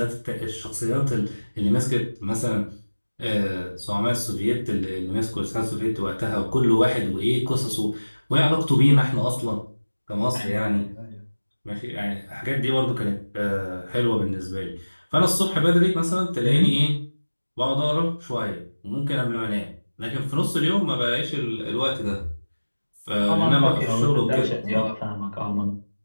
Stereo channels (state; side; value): inverted; both; correlation -1.00